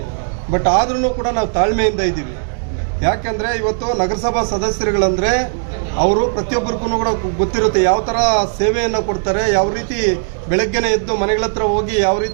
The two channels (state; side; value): silent; left; 68 dB below the other